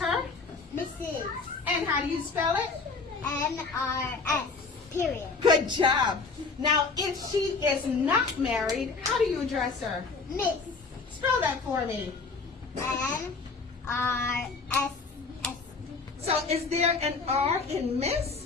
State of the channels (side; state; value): right; quieter; 4.3 dB